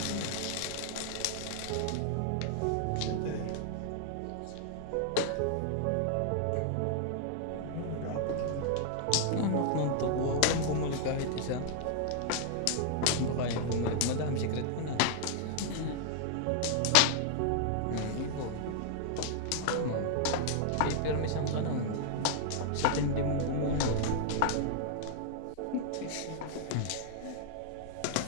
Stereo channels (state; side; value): different; both; correlation -0.01